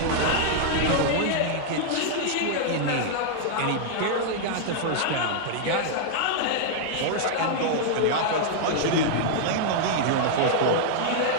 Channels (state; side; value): different; both; correlation -0.01